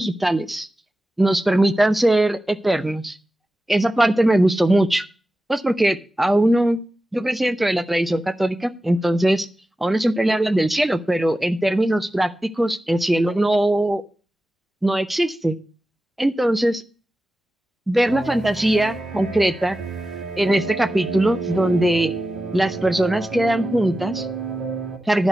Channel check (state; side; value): normal; both; correlation 0.93